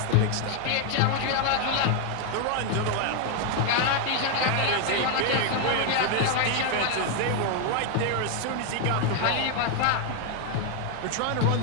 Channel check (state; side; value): different; both; correlation 0.01